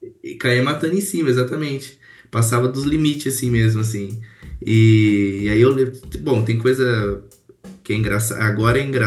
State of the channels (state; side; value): identical; both; correlation 1.00